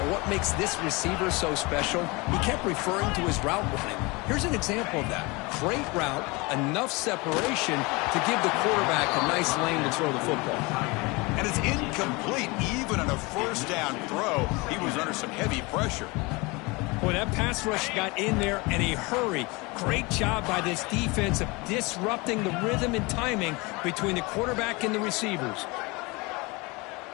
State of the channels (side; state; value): right; quieter; 25.6 dB